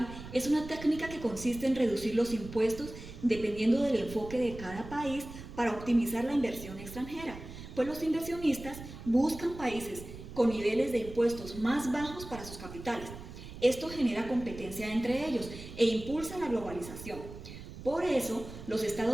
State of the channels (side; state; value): right; noise; rumble, 13 dB below the sound